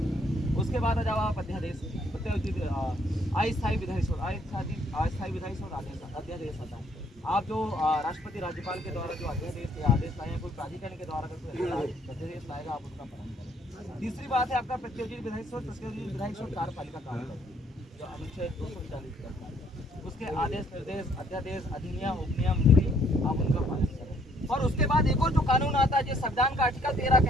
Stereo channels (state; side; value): normal; both; correlation 0.65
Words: उसके बाद जब आप अध्यादेश अस्थायी विधायी स्रोत, अस्थायी विधायी स्रोत अध्यादेश आता है। आप जो राष्ट्रपति राज्यपाल के द्वारा जो अध्यादेश या आदेश लाए, कोई प्राधिकरण के द्वारा कोई अध्यादेश लाएगा आप उसका पालन करें। तीसरी बात है आपका प्रत्योजित विधायी स्रोत। प्रत्योजित विधायी स्रोत कार्यपालिका काम करती है, जो अनुच्छेद 240 करता है। उसके आदेश निर्देश अध्यादेश अधिनियम उपनियम विधि आप उनका पालन करें। और उसके बाद एक और जो कानून आता है जो संविधान का आर्टिकल 13